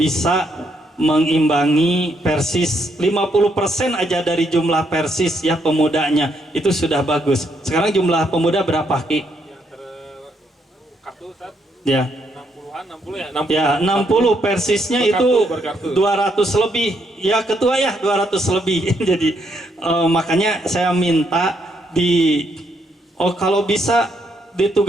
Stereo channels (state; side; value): normal; both; correlation 0.75